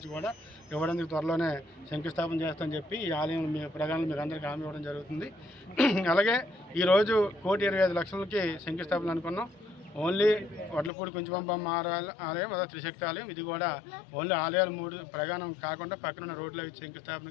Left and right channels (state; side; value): drops out; right; at 10.9 s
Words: కూడా ఇవ్వడానికి త్వరలోనే శంకుస్థాపన చేస్తామని చెప్పి ఈ ఆలయం మీ ప్రజలను మీకు అందరికీ హామీ ఇవ్వడం జరుగుతుంది. అలాగే ఈరోజు 1,25 లక్షలకి శంకుస్థాపన అనుకున్నాం. ఓన్లీ వడ్లపూడి కుంచుబంబమ్మ ఆలయం, అదే త్రిశక్తి ఆలయం, ఇది కూడా ఓన్లీ ఆలయాలు 3 ప్రగానం కాకుండా పక్కన రోడ్ల